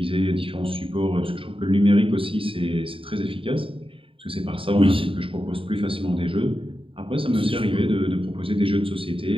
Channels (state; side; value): late; left; 0.26 ms